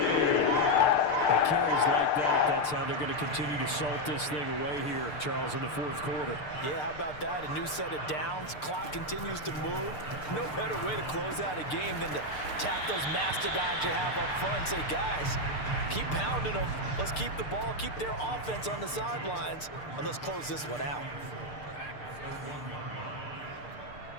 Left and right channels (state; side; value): late; right; 6.7 ms